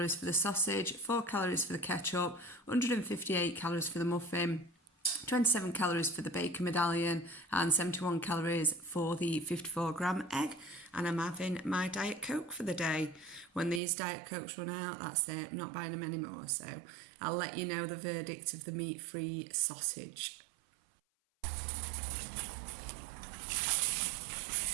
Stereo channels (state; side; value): drops out; left; at 13.8 s